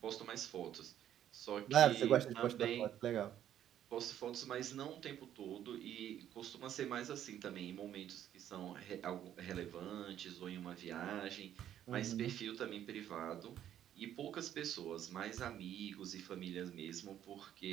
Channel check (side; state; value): left; quieter; 10.9 dB